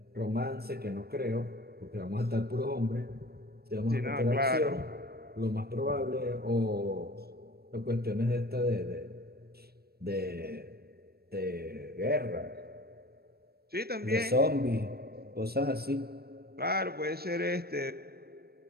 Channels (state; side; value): late; left; 0.46 ms